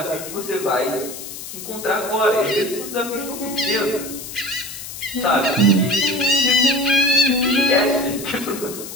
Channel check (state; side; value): noise; left; hiss, 11 dB below the sound